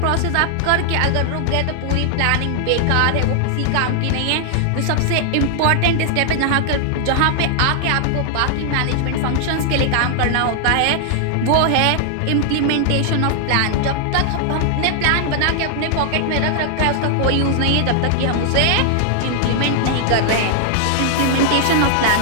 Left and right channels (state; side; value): different; both; correlation 0.00